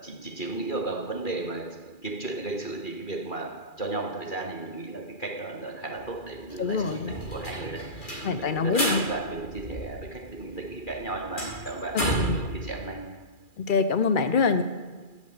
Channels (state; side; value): late; right; 2.4 ms